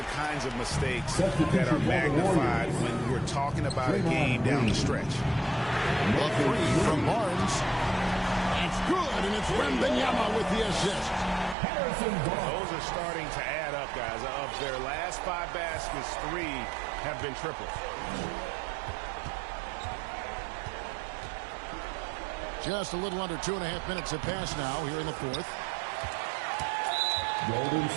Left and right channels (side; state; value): left; drops out; at 11.6 s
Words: kinds of mistakes that are magnified when we're talking about a game down the stretch. A 3 from Barnes. That's good, and it's Wembanyama with the assist. Those are starting to add up, guys. Of their last 5 baskets, 3 have been triples. Just a little under 2.5 minutes have passed now here in the fourth. Golden